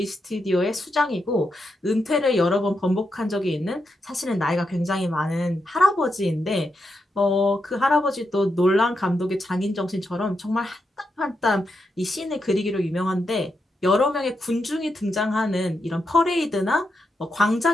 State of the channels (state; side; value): normal; both; correlation 0.84